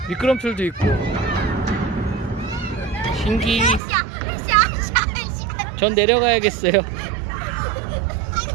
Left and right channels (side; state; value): left; drops out; at 3.8 s